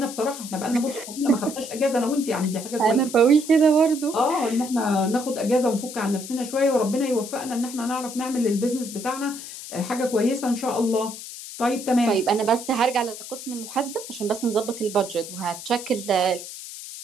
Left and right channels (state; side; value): noise; left; hiss, 11 dB below the sound